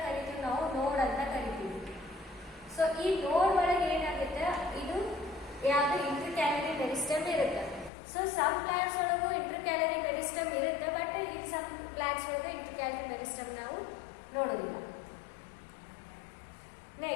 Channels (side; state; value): right; drops out; at 7.9 s